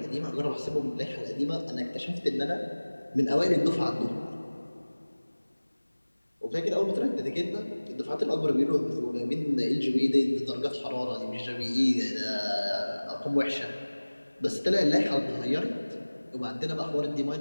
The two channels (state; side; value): inverted; both; correlation -1.00